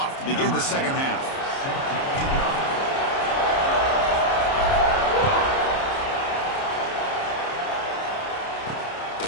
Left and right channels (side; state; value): right; late; 30 ms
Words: to begin the second half.